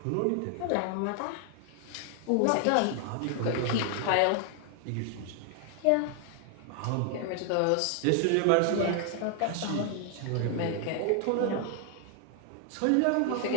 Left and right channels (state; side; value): different; both; correlation 0.00